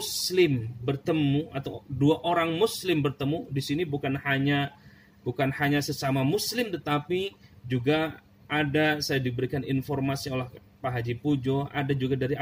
bertemu atau dua orang muslim bertemu, di sini bukan hanya sesama muslim, tetapi juga ada, saya diberikan informasi oleh Pak Haji Pujo, ada juga dari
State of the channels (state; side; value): identical; both; correlation 1.00